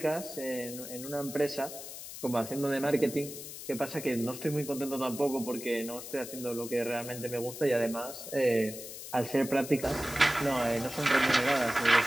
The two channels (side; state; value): left; noise; hiss, 11 dB below the sound